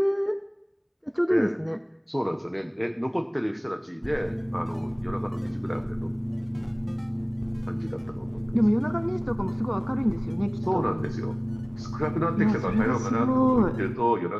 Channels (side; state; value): both; identical; correlation 1.00